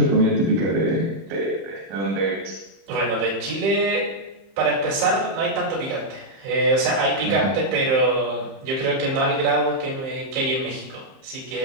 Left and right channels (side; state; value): left; late; 30 ms